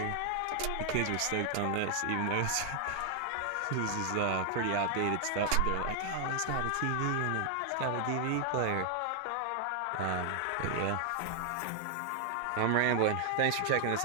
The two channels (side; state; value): both; different; correlation 0.00